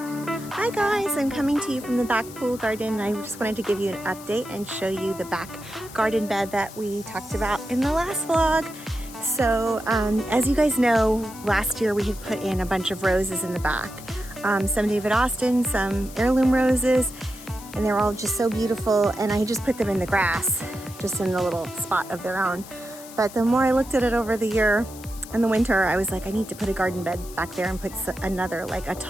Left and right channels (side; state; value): left; noise; hiss, 17 dB below the sound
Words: guys, I'm coming to you from the back pool garden. I just wanted to give you an update and show you the back garden bed that we talked about in the last vlog. So as you guys know, last year we had put in a bunch of roses in the back. Some David Austin, some heirloom roses, and they're all just so beautiful, and I just put them in the grass, just in a little spot of their own. But the more I looked at it over the year, in the winter, I was like, I need to put a garden bed back there and put another, like a